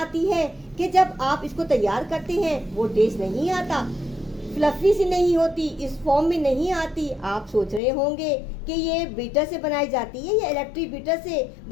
है कि जब आप इसको तैयार करते हैं वो टेस्ट नहीं आता, फ्लफी सी नहीं होती, इस फॉर्म में नहीं आती। आप सोच रहे होंगे कि ये बीटर से बनाई जाती है या इलेक्ट्रिक बीटर से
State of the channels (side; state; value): right; drops out; at 7.8 s